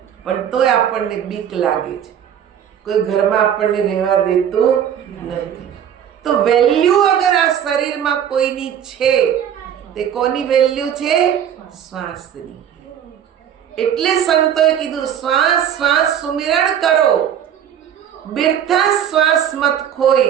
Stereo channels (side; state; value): left; quieter; 9.3 dB